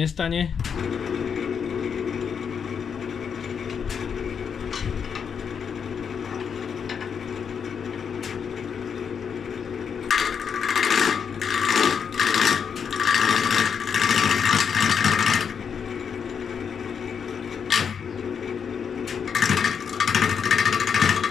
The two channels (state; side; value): quieter; right; 6.9 dB